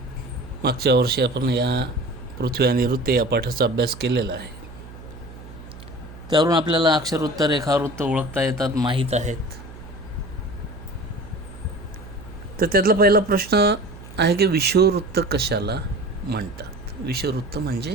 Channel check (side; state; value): right; noise; hum, 16 dB below the sound